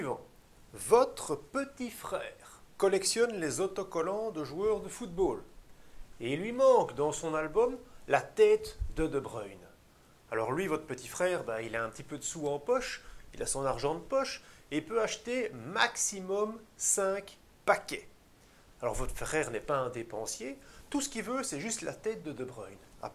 Votre petit frère collectionne les autocollants de joueurs de football. Et il lui manque dans son album la tête de Bruyne. Alors lui, votre petit frère, il a un petit peu de sous en poche, il a son argent de poche, et il peut acheter maximum 5 paquets. Alors votre frère n'est pas un dépensier, tout ce qu'il veut, c'est juste la tête de Bruyne.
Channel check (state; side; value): identical; both; correlation 1.00